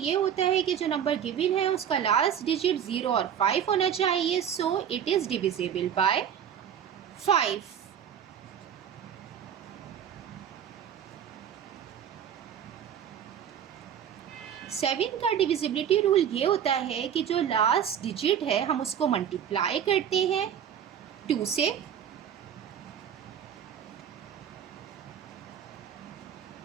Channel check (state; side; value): quieter; left; 8.9 dB